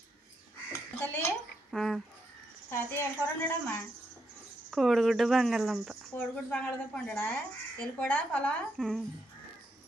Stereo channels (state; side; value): normal; both; correlation 0.80